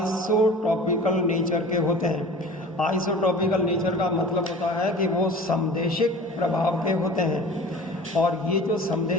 नेचर के होते हैं। आइसोटॉपिकल नेचर का मतलब होता है कि वो समदेशिक प्रभाव के होते हैं। और ये जो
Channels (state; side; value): normal; both; correlation 0.41